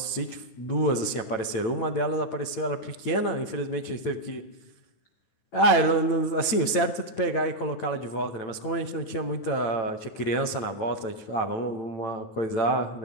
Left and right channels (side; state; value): right; late; 9.0 ms